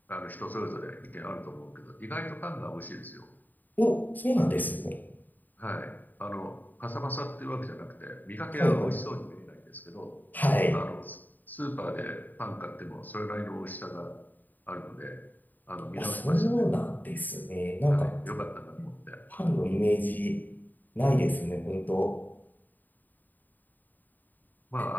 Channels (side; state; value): right; late; 0.087 ms